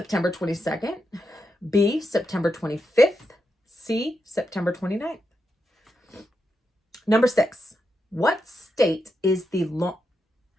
22nd. B, September 25th. C, September 29th. Number 6. What state is the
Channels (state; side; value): normal; both; correlation 0.85